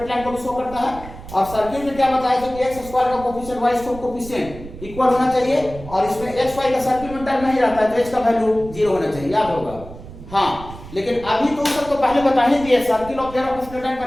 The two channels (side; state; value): right; noise; rumble, 15 dB below the sound